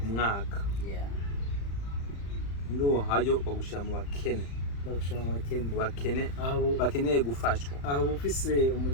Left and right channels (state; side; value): late; right; 35 ms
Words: mwaka ndo hayo bagushyira mu bakene bakeneye gufashwa aho ufise